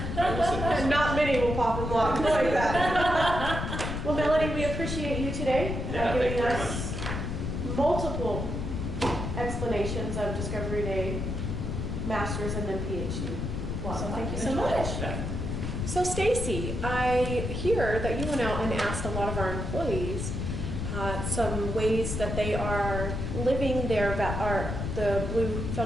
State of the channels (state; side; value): noise; left; rumble, 3 dB below the sound